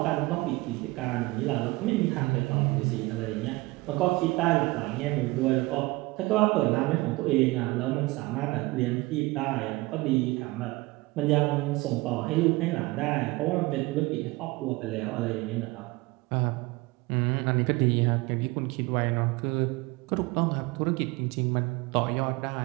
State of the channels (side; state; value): left; quieter; 22.2 dB